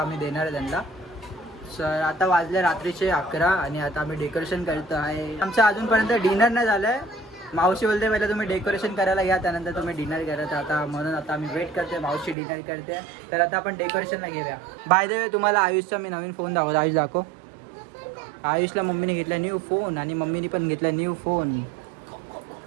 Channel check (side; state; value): left; drops out; at 12.4 s